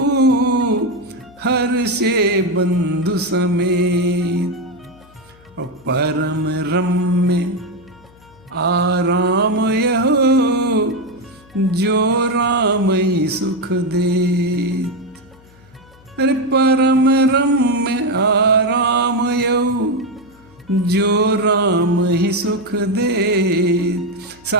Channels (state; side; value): noise; left; hum, 27 dB below the sound